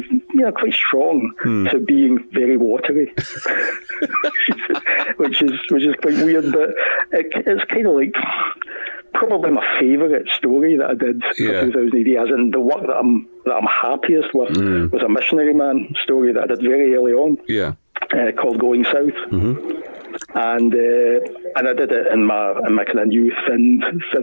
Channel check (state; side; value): inverted; both; correlation -1.00